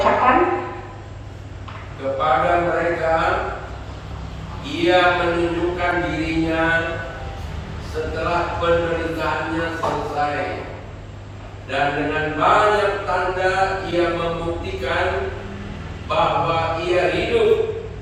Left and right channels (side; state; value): both; identical; correlation 1.00